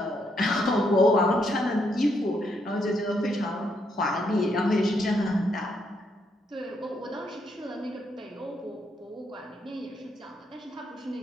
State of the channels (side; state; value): both; normal; correlation 0.76